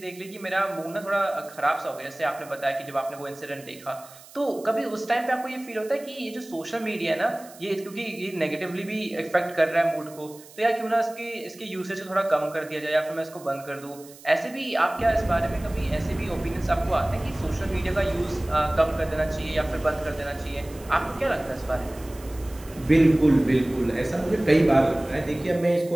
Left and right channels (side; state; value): right; noise; hiss, 21 dB below the sound